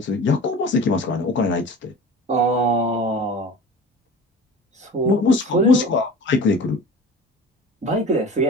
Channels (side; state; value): both; normal; correlation 0.38